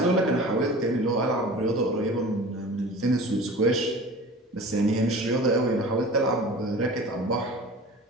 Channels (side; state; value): both; normal; correlation 0.39